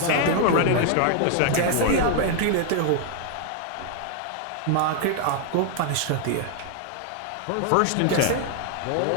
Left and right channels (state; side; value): different; both; correlation 0.00